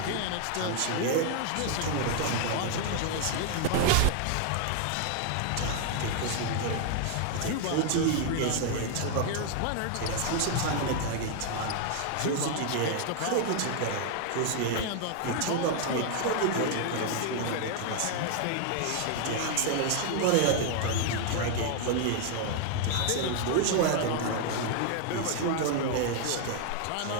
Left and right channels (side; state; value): both; different; correlation 0.00